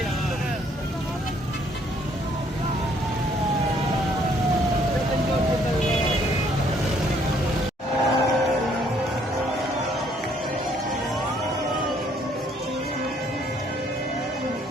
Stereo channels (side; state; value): both; normal; correlation 0.65